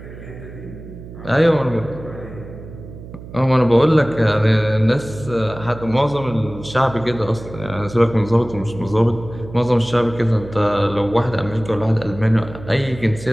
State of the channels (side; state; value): right; noise; hum, 14 dB below the sound